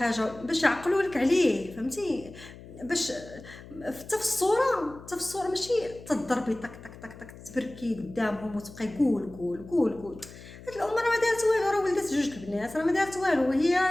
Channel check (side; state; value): left; noise; hum, 17 dB below the sound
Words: باش يعقلوا لك عليه، فهمتي؟ باش حتى في الصوره ماشي تضربي طق تبركي قدامهم وتبقاي قول. هاد الام راه ما دارت والو، راه ولدت جوج البنات راه ما دارت والو. هي